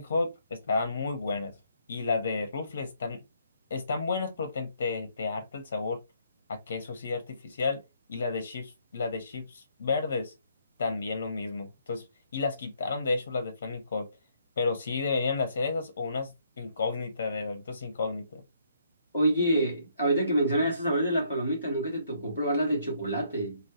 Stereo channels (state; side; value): inverted; both; correlation -0.70